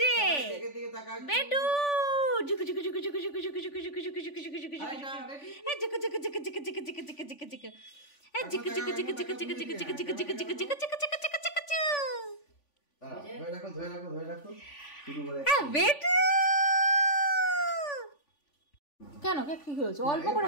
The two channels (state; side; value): late; right; 3.5 ms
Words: যে দিকে দিকে তাকাও। বেটু, জুকু জুকু জুকু জুকু জুকু জুকু জুকু জুকু জুকু জুকু জুকু জুকু জুকু আরেকটা, ready? এই জুকু জুকু জুকু জুকু জুকু জুকু জুকু জুকু জুকু এই জুকু জুকু জুকু জুকু জুকু জুকু জুকু জুকু জুকু জুকু জুকু জুকু জুকু দাঁড়াও, ধরে রাখো, ধরে রাখো, ধরে রাখো। শুরু করে। বেটু। কেন কেক কি হয়েছে? অল্প করে